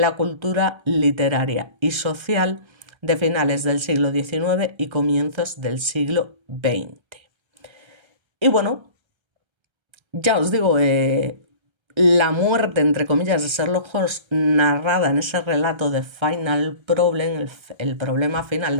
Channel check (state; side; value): late; left; 1.3 ms